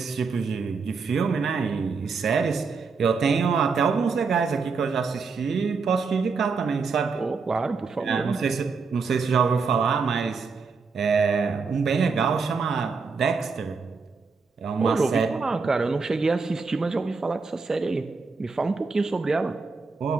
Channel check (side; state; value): left; quieter; 4.8 dB